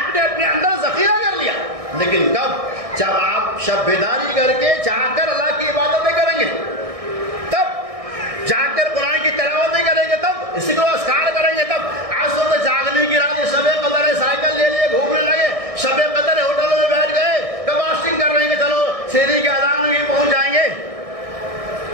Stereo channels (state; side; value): late; left; 1.6 ms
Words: نے اپنے اندر ذخیرہ کر لیا، لیکن کب؟ جب آپ شب بیداری کر کے جا کر اللہ کی عبادتیں کریں گے، تب جا کر قرآن کی تلاوتیں کریں گے، تب اسی کو اذکار کریں گے، تب آج تو جاگنے کی رات شب قدر ہے، سائیکل لے لیے گھومنے لگے، شب قدر ہے ہوٹلوں میں بیٹھ گئے، کب فاسٹنگ کر رہے ہیں کہ چلو شیری کے اذان میں پہنچ جائیں گے،